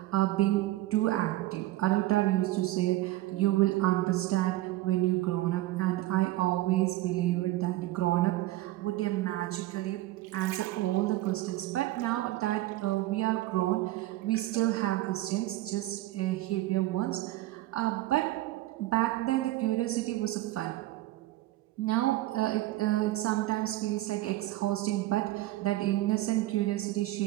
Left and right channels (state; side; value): quieter; left; 16.6 dB